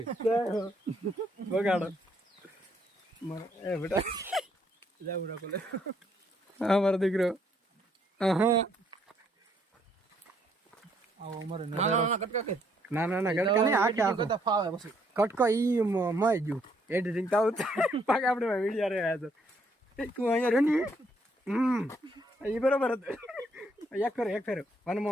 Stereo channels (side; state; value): both; normal; correlation 0.70